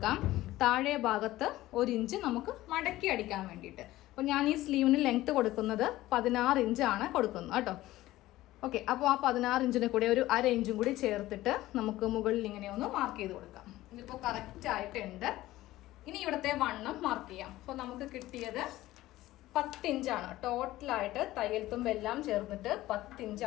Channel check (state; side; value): quieter; right; 16.3 dB